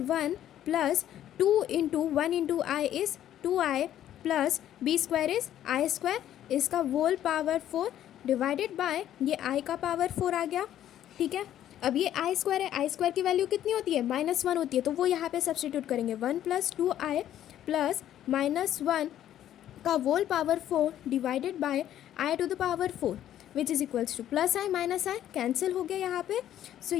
1 plus 2 into 1 into i is 2i plus B square is I square, इसका वोल पावर 4 डिवाइडेड बाय ये i का पावर 4 आ गया. ठीक है, अब ये आई स्क्वायर है, आई स्क्वायर की वैल्यू कितनी होती है -1 होती है, तो वो यहाँ पे सब्सटीट्यूट करेंगे 1 प्लस 2i प्लस -1 का whole power 4 divided by i to the power 4 which is equals to plus i minus i cancel हो गया यहाँ पे. सो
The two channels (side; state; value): right; quieter; 11.6 dB